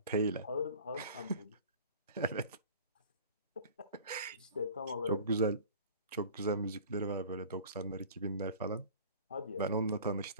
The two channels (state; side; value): inverted; both; correlation -0.43